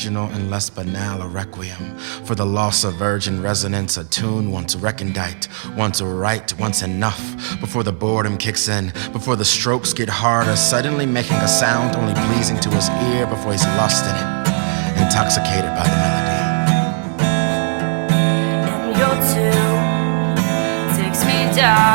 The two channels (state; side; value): silent; left; 58 dB below the other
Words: and less banal, a requiem for the loss of virgin resonance, a tune once recondite, once right, once enough, before the boredom kicks in, before the strokes get harder, suddenly making a sound only pleasing to his ear before he's lost in it, intoxicated by the melody. And your tune takes me